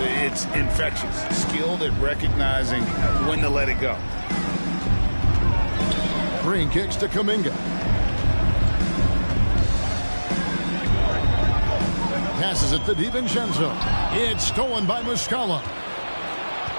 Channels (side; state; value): both; inverted; correlation -1.00